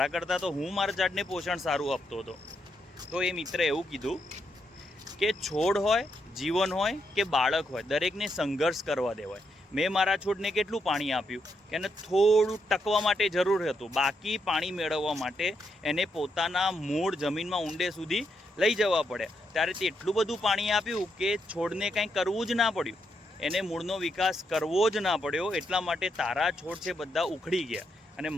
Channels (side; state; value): both; normal; correlation 0.80